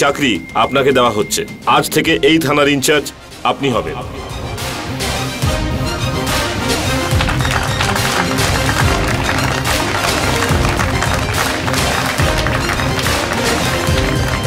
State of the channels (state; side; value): identical; both; correlation 1.00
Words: চাকরি আপনাকে দেওয়া হচ্ছে। আজ থেকে এই থানার ইনচার্জ আপনি হবেন।